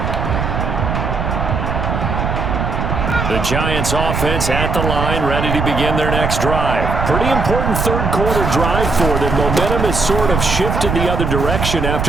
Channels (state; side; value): noise; right; rumble, 2 dB below the sound